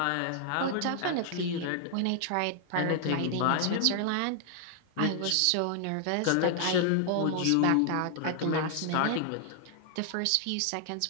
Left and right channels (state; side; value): different; both; correlation 0.00